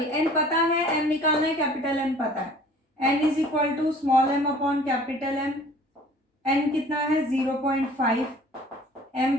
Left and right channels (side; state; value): both; normal; correlation 0.50